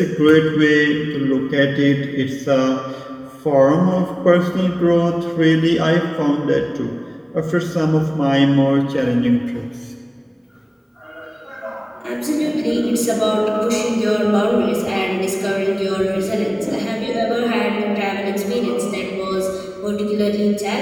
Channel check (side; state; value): both; identical; correlation 1.00